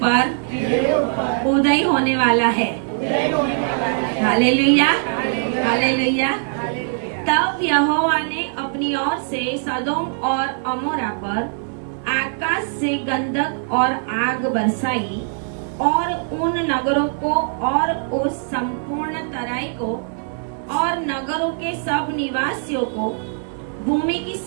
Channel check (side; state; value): left; silent; 65 dB below the other